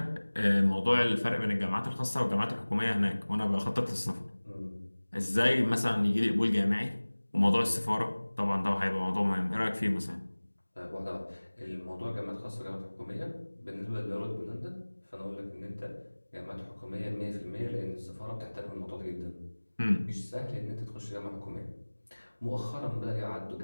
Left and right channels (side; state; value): both; inverted; correlation -1.00